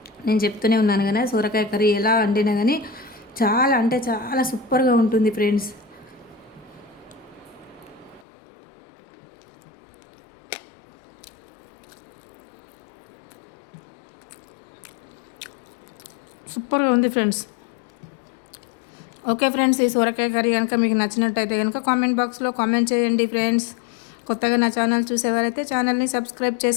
నేను చెప్తూనే ఉన్నాను కదా, సొరకాయ కర్రీ ఎలా వండినా కానీ చాలా అంటే చాలా సూపర్గా ఉంటుంది ఫ్రెండ్స్. సూపర్గా ఉంది ఫ్రెండ్స్. ఓకే ఫ్రెండ్స్, ఈ సొరకాయ కర్రీ కనుక మీకు నచ్చినట్టయితే కనుక కామెంట్ బాక్స్లో కామెంట్ చేయండి ఫ్రెండ్స్. కొత్తగా నా ఛానల్ చూసేవారైతే ఛానల్ని సబ్స్క్రైబ్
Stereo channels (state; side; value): drops out; right; at 8.2 s